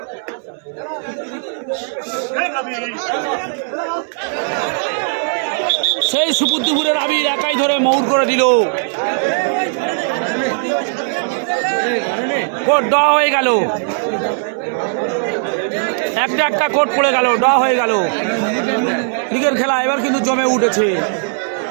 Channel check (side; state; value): left; silent; 67 dB below the other